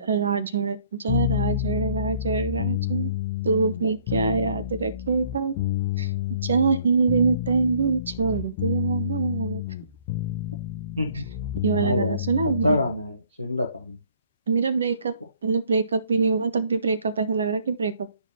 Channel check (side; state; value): both; inverted; correlation -0.59